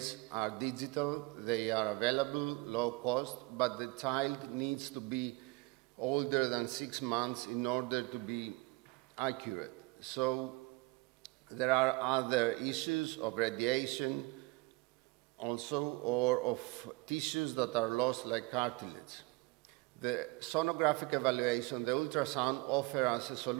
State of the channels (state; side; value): quieter; left; 24.1 dB